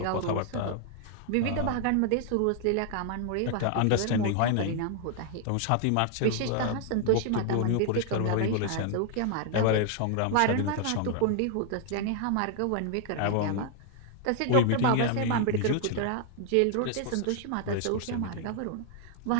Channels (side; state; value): both; different; correlation 0.00